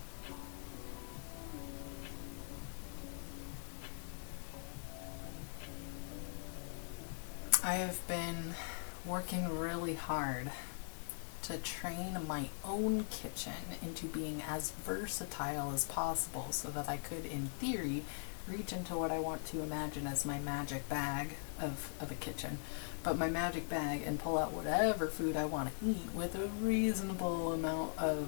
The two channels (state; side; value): silent; right; 50 dB below the other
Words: I have been working really hard to train my own kitchen into being as versatile as possible so that I could, in theory, reach into what I want to imagine as my magic bag of a kitchen, but my magic bag, and pull out whatever food I want to eat with a reasonable amount